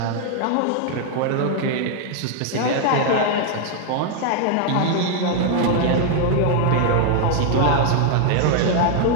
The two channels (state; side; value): different; both; correlation 0.00